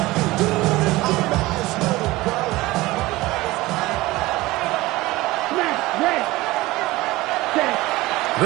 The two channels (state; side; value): quieter; left; 19.4 dB